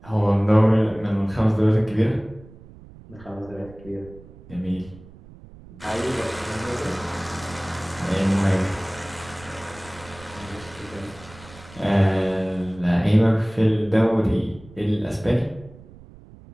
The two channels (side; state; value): right; noise; rumble, 20 dB below the sound